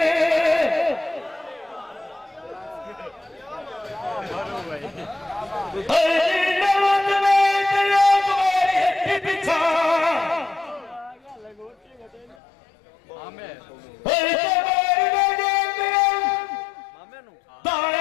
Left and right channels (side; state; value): right; drops out; at 12.4 s